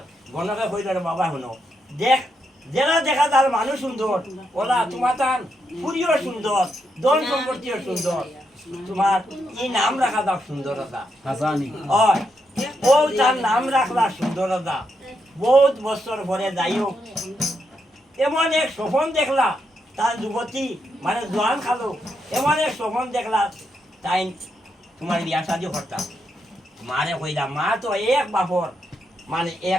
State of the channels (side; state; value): both; normal; correlation 0.81